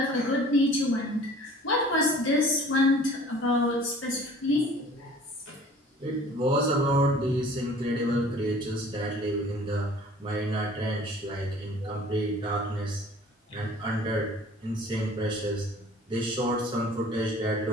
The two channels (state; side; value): normal; both; correlation 0.48